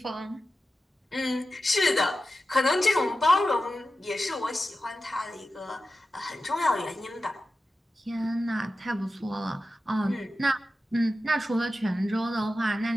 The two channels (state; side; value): normal; both; correlation 0.92